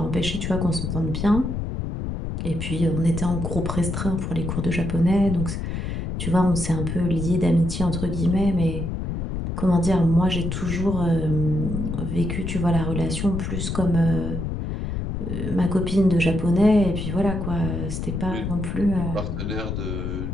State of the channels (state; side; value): noise; left; rumble, 4 dB below the sound